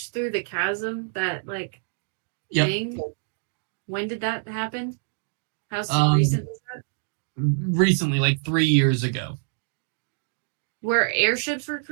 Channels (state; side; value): silent; left; 61 dB below the other